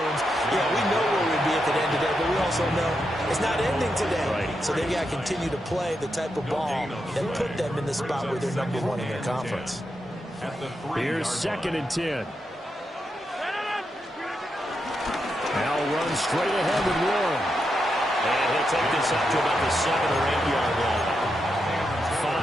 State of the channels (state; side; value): normal; both; correlation 0.84